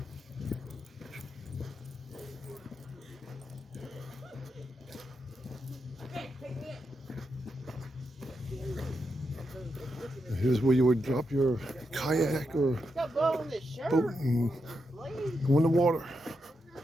Here's where you would drop your kayak or boat and go in the water.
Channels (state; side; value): normal; both; correlation 0.84